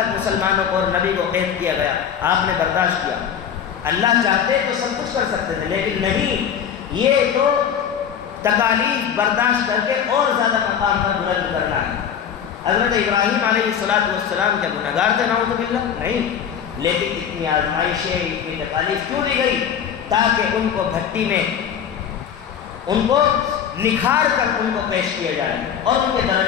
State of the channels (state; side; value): quieter; right; 8.3 dB